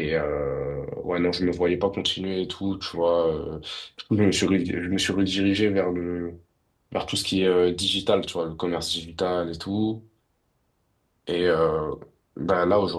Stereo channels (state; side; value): identical; both; correlation 1.00